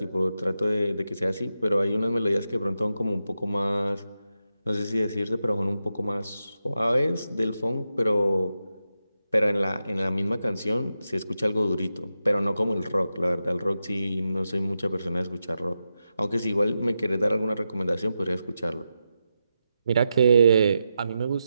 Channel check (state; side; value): inverted; both; correlation -0.88